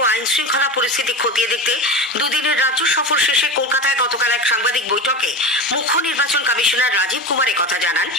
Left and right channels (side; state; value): both; normal; correlation 0.25